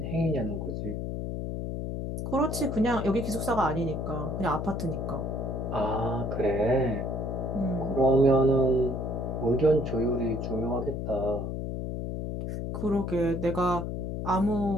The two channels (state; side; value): noise; left; hum, 4 dB below the sound